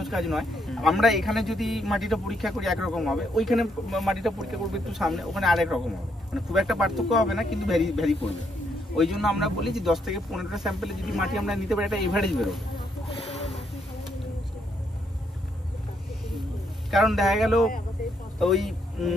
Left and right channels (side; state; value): both; normal; correlation 0.75